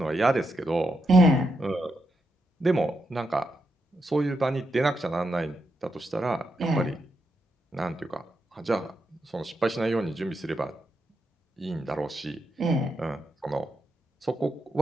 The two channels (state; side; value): normal; both; correlation 0.83